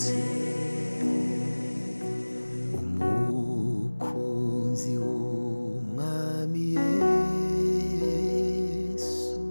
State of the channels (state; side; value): inverted; both; correlation -1.00